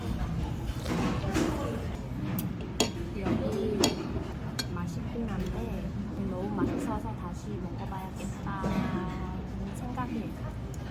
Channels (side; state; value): both; identical; correlation 1.00